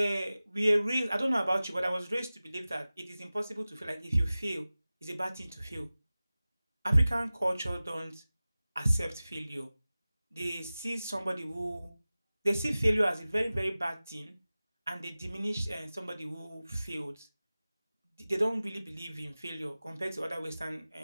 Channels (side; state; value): both; inverted; correlation -0.97